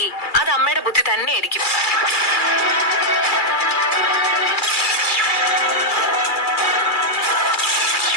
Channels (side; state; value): right; late; 2.3 ms